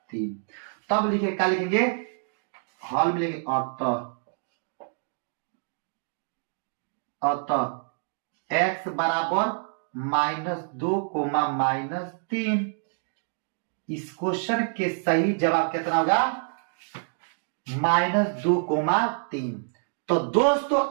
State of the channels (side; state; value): left; silent; digital silence